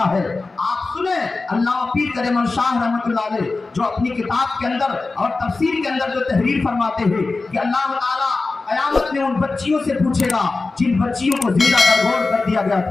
ہے۔ آپ سنیں علامہ پیر کریم شاہ رحمۃ اللہ علیہ جو اپنی کتاب کے اندر اور تفسیر کے اندر جو تحریر فرماتے ہیں کہ اللہ تعالیٰ قیامت میں ان بچیوں سے پوچھے گا جن بچیوں کو زندہ درگور کر دیا گیا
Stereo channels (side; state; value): right; quieter; 3.7 dB